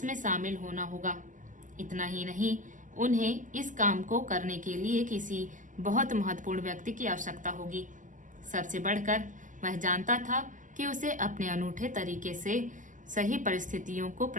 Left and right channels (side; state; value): left; late; 0.37 ms